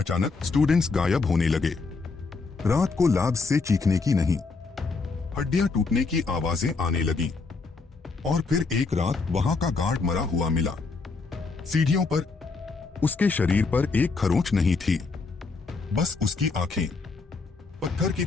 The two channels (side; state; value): right; quieter; 4.2 dB